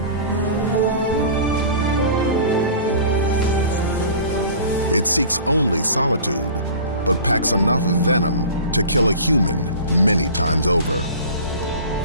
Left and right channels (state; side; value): inverted; both; correlation -0.40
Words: It seeks only solitude, but packs enough venom to kill a human many times over,